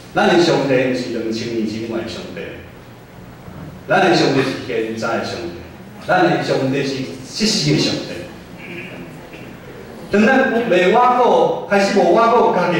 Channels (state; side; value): identical; both; correlation 1.00